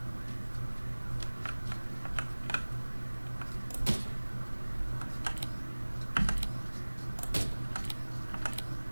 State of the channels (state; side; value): inverted; both; correlation -1.00